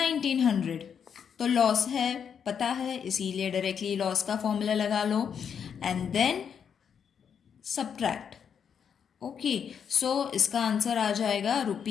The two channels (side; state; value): right; quieter; 7.5 dB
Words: तो लॉस है, पता है, इसीलिए डायरेक्टली लॉस का फॉर्मूला लगा लो and then subtract. Okay, so इसका आंसर आ जाएगा